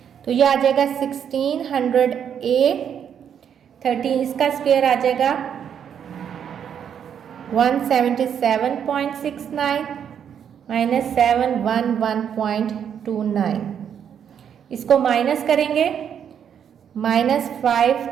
तो ये आ जाएगा 1600A, 13 इसका स्क्वायर आ जाएगा 177.69, -711.29, इसको माइनस करेंगे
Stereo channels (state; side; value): quieter; left; 8.4 dB